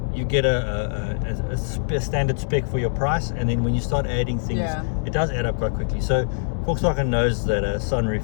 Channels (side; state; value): right; silent; digital silence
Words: you get a standard spec for your price, and then when you start adding things, it does add up quite quickly. So Volkswagen knows that a